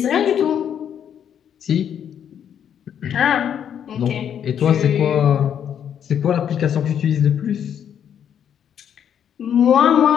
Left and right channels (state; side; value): quieter; right; 8.9 dB